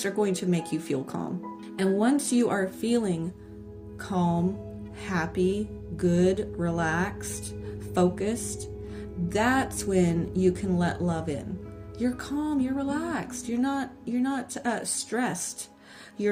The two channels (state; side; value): identical; both; correlation 1.00